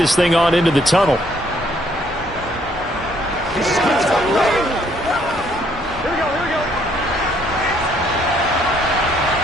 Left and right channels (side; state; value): both; normal; correlation 0.67